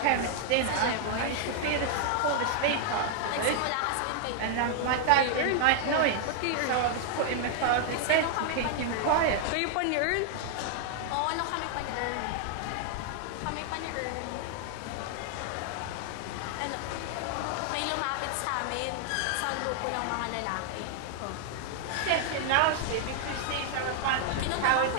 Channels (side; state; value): both; different; correlation 0.00